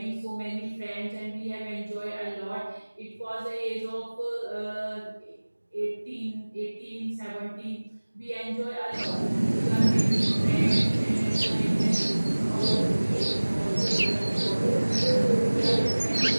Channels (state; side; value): inverted; both; correlation -1.00